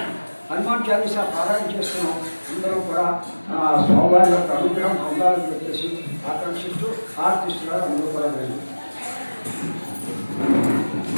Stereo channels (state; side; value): inverted; both; correlation -1.00